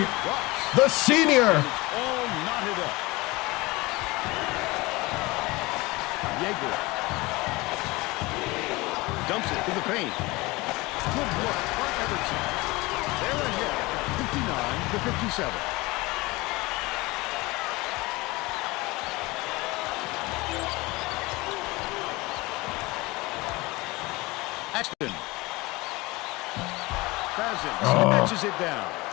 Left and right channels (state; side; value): quieter; right; 22.3 dB